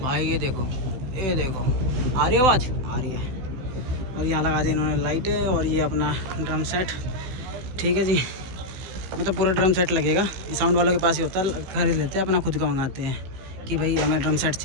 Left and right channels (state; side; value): late; left; 16 ms